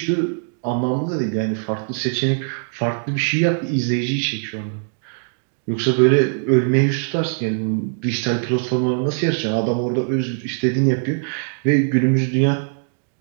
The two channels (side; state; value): left; silent; digital silence